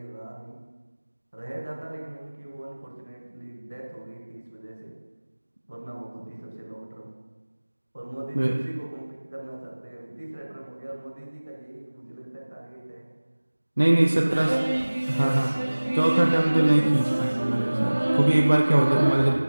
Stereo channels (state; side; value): inverted; both; correlation -1.00